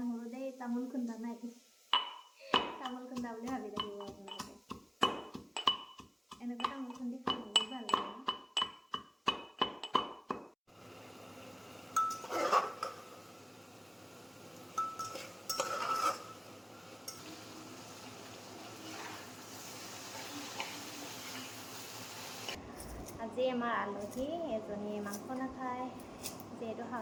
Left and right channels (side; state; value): both; identical; correlation 1.00